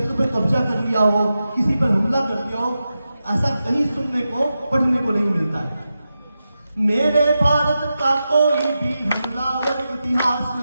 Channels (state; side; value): inverted; both; correlation -0.91